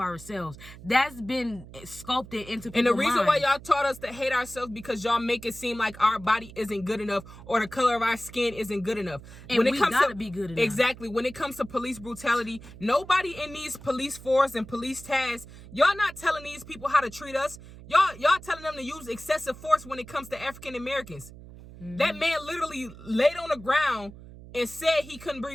That's been sculpted into people's And the reason why y'all taught us to hate ourselves, because y'all make it seem like our body isn't good enough or the color of our skin isn't good enough. And when it comes to be good enough. Exactly. When it comes to police brutality, nobody in these police force and police tasks, y'all not telling these people how to treat us. Y'all telling them to use excessive force when it comes to African Americans. Mm-hmm. That man literally laid on the ground and said he couldn't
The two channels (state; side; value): noise; right; hum, 17 dB below the sound